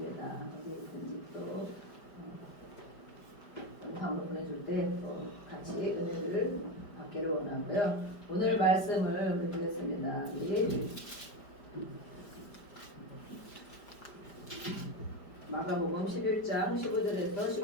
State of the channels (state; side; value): late; right; 5.0 ms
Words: 어디 있든지 또 영상으로 보내줄 때 또 같이 은혜를 받기를 원하고요. 오늘 말씀을 우리 보겠습니다. 우리 마가복음 11장 15절에서